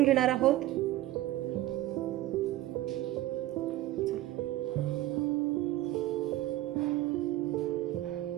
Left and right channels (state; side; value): quieter; left; 15.4 dB